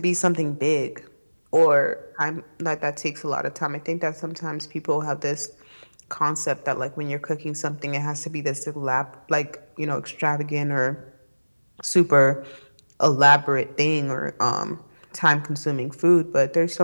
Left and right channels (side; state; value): both; inverted; correlation -1.00